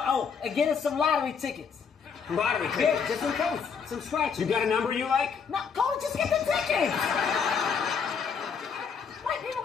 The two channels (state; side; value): quieter; right; 6.3 dB